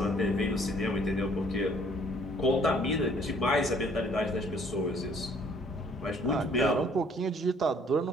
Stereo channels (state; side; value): normal; both; correlation 0.60